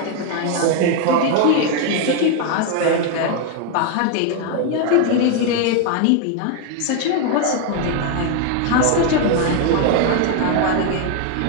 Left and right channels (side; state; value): both; different; correlation 0.01